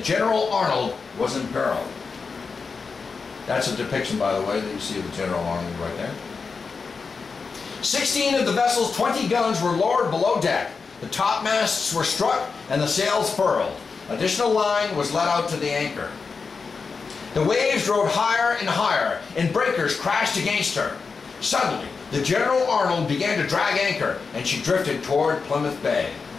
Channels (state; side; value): quieter; right; 4.9 dB